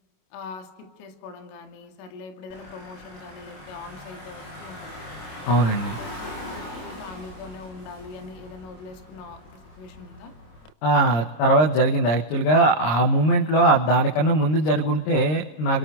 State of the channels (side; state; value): right; late; 27 ms